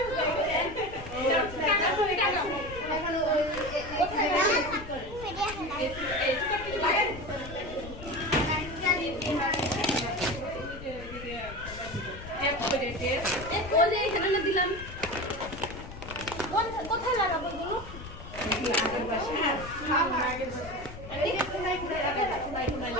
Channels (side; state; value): left; noise; rumble, 12 dB below the sound